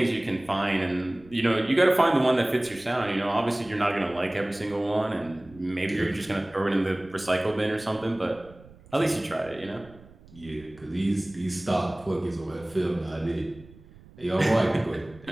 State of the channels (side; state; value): right; noise; rumble, 23 dB below the sound